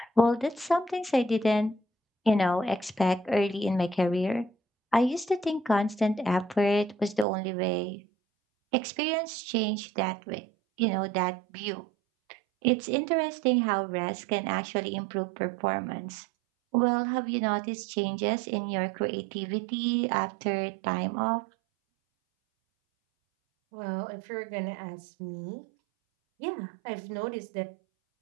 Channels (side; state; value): left; drops out; at 7.2 s